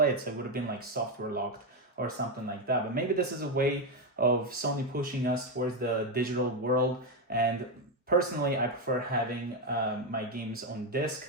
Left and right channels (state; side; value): normal; both; correlation 0.07